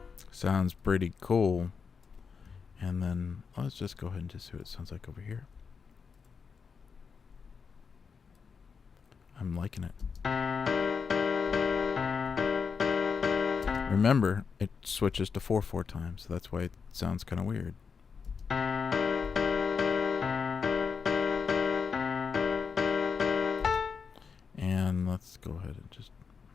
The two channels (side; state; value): right; quieter; 5.7 dB